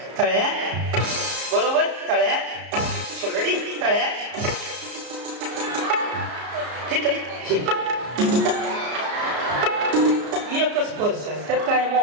तळ्यात बरोबर, तळ्यात. रेडी? तळ्यात. एकच पर्स आहे, त्यात काय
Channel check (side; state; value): left; late; 34 ms